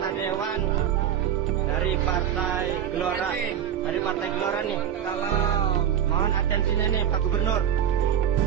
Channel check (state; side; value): quieter; left; 9.4 dB